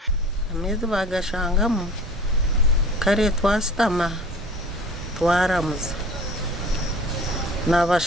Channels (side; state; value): both; normal; correlation 0.43